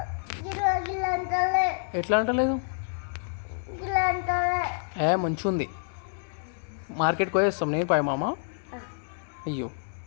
ఎట్లా అంటలేదు మంచిగా ఉంది. మార్కెట్కి పోయేస్తాం నేను పై మామ. అయ్యో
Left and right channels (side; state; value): right; silent; 59 dB below the other